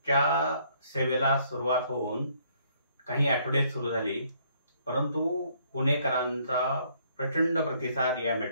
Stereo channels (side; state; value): both; inverted; correlation -0.66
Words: सेवेला सुरुवात होऊन काही आठवडे सुरू झाली, परंतु पुणेकरांचा प्रचंड प्रतिसाद या